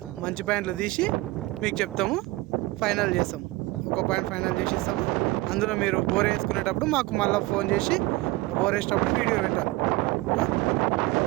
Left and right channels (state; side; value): quieter; left; 20.2 dB